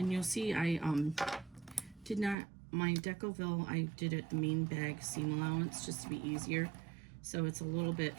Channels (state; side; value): drops out; left; at 2.4 s